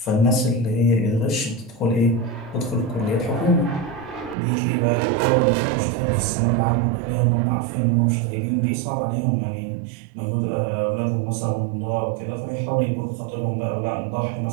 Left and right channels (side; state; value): left; drops out; at 4.4 s